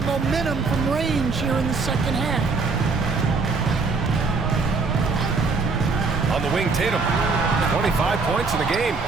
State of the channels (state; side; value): quieter; left; 4.3 dB